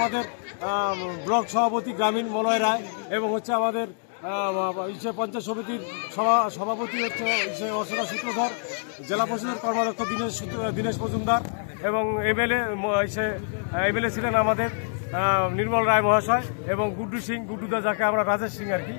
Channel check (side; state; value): right; silent; digital silence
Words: ব্লক সভাপতি গ্রামীণ মলয় রায় এবং হচ্ছে আমাদের পঞ্চায়েত সমিতির সভাপতি হচ্ছে অর্চনা সূত্রধর, জেলা পরিষদের কর্মাধ্যক্ষ দীনেশ মজুমদার এবং এমএলএ ছিলেন আমাদের নির্মল রায় মহাশয় এবং গুড্ডু সিং, গুড্ডুদা যাকে আমরা রাজেশ সিং আর কি,